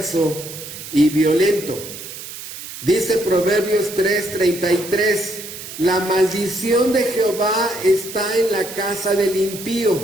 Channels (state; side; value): noise; right; hiss, 11 dB below the sound